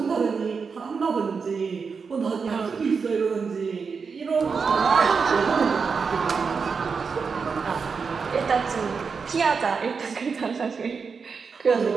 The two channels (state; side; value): quieter; left; 5.4 dB